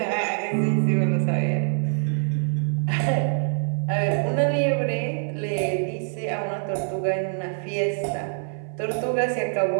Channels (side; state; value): left; silent; 57 dB below the other